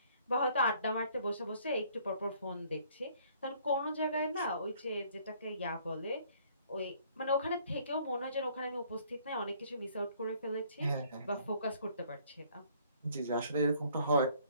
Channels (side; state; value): both; inverted; correlation -0.61